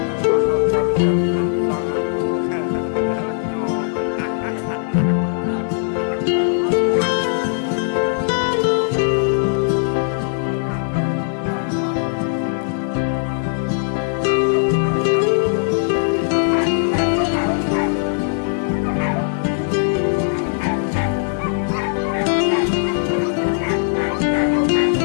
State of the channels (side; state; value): right; silent; digital silence